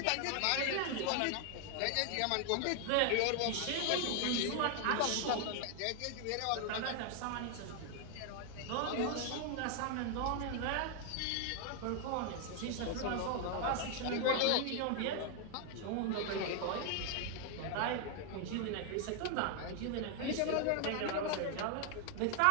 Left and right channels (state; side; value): different; both; correlation 0.00